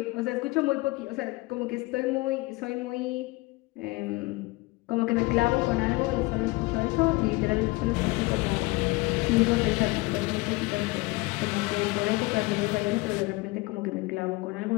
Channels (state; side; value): quieter; right; 22.9 dB